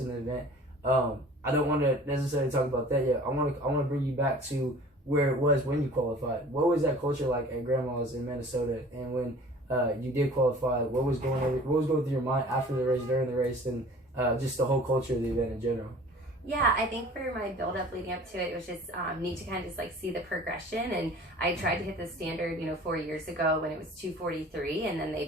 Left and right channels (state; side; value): normal; both; correlation 0.46